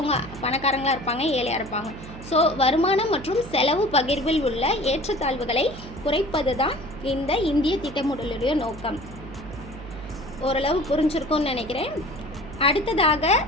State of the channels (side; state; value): right; noise; hum, 14 dB below the sound